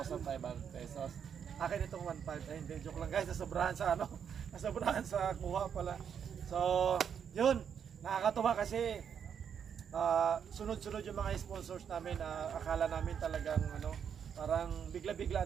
pesos. Akin itong 1,500. Ay, hindi, joke lang guys, nasobrahan sa nasobrahan sa kuha pala. So yun, nakakatuwa kasi sunod-sunod yung mga sponsors namin. Akala namin talagang parang bigla-bigla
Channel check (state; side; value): quieter; left; 7.8 dB